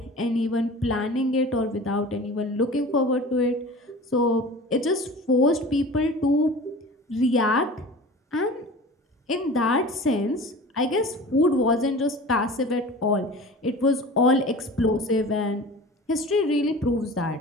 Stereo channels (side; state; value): both; normal; correlation 0.38